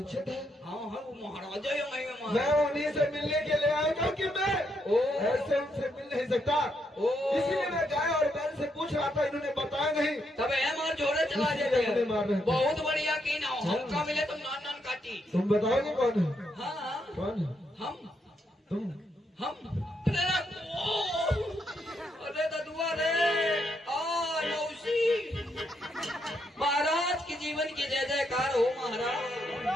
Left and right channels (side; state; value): both; normal; correlation 0.78